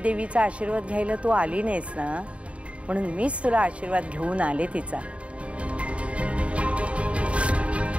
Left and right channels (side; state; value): left; late; 0.063 ms